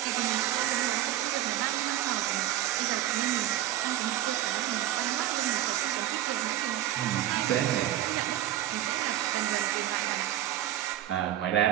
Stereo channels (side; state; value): left; quieter; 13.3 dB